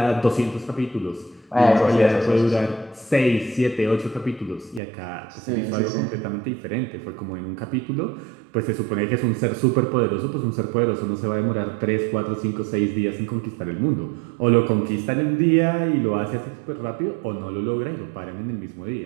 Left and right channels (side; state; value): left; drops out; at 4.8 s